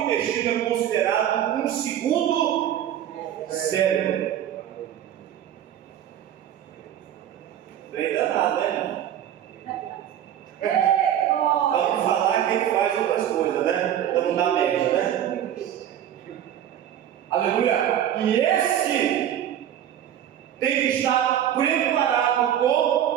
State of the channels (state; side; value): quieter; left; 10.6 dB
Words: é considerado um segundo cérebro. Bem danado, né? Vamos falar que ele faz outras coisas, né? Então não dá média, né? Aleluia! E esse tem que estar preparado